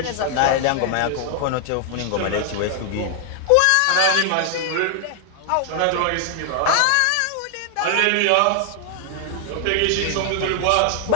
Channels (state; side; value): different; both; correlation 0.00